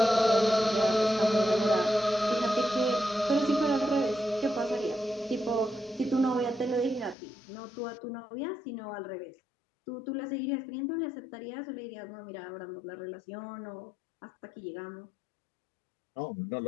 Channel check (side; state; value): right; drops out; at 7.2 s